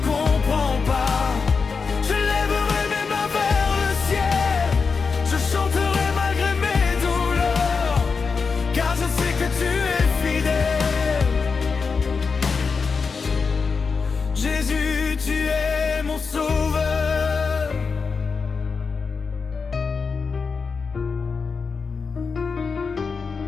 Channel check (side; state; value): right; quieter; 5.0 dB